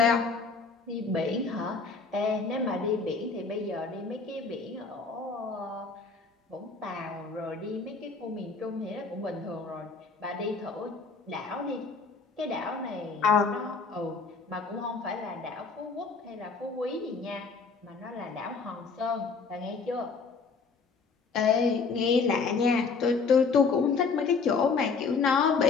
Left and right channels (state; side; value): quieter; right; 4.8 dB